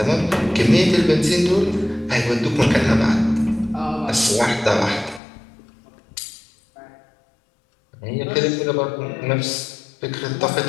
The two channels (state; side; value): drops out; right; at 5.2 s